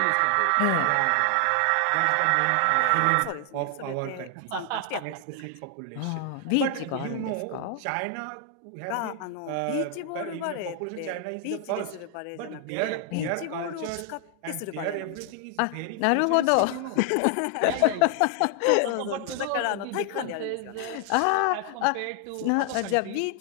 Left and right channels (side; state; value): both; different; correlation 0.00